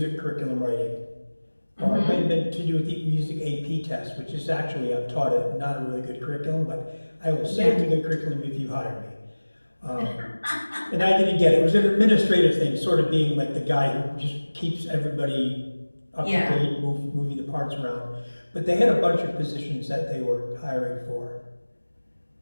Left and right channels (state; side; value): inverted; both; correlation -1.00